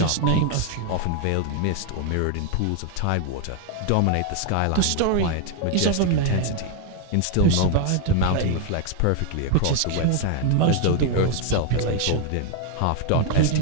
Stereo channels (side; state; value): both; different; correlation 0.00